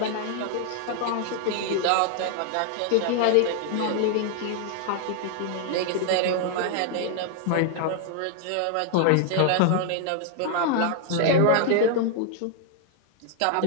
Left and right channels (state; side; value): different; both; correlation 0.00